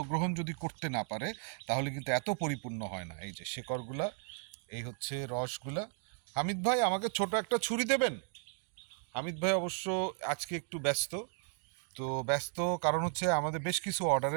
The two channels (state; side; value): silent; left; 54 dB below the other